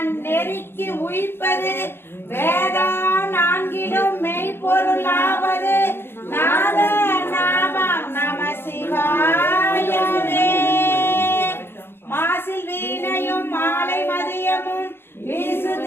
உயிர்ப்பது வேதா நான்கிலும் மெய்ப்பொருளாவது நாத நாமம் நம சிவாயவே. மாசில் வீணையும் மாலை மதியமும் வீசு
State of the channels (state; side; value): late; right; 0.11 ms